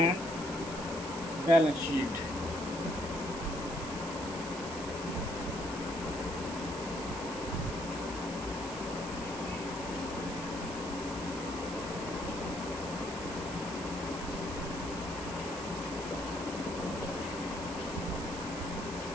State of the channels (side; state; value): right; noise; hiss, 11 dB below the sound